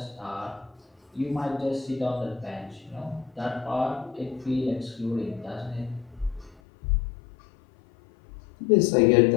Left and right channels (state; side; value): drops out; right; at 6.6 s